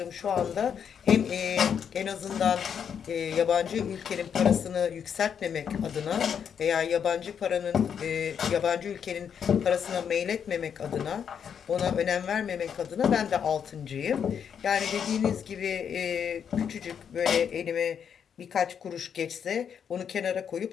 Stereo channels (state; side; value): quieter; right; 7.7 dB